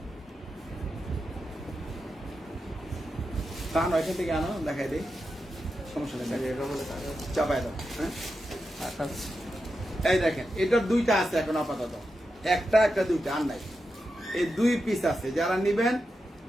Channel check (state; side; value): normal; both; correlation 0.88